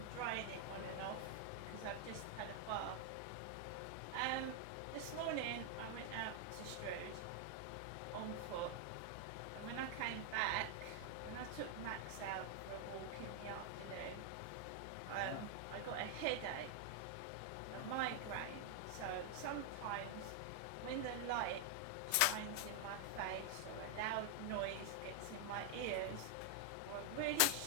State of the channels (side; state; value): both; different; correlation 0.00